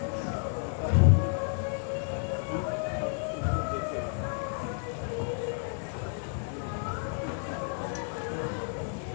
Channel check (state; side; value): silent; right; 57 dB below the other